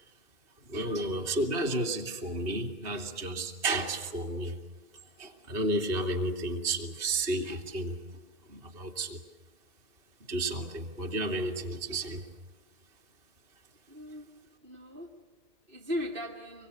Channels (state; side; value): late; left; 2.7 ms